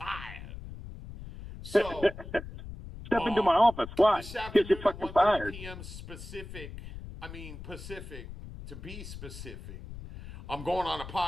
So, Step into um, my office. Why? this Because you're afternoon at fucking 1:30 fired. p.m. Pacific, to be specific, I'm going on a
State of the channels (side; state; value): left; noise; rumble, 12 dB below the sound